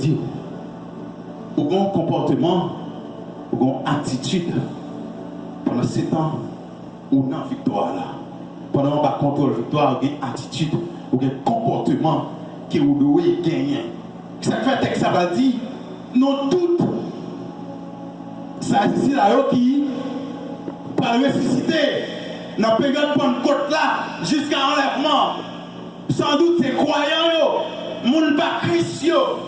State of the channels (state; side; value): identical; both; correlation 1.00